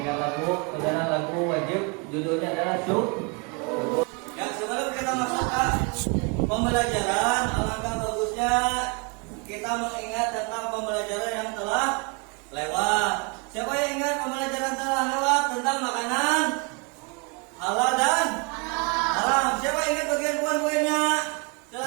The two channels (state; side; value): quieter; left; 32.5 dB